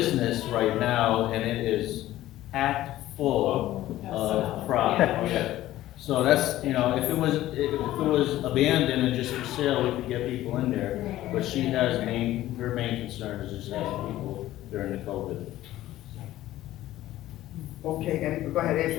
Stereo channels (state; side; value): quieter; right; 14.8 dB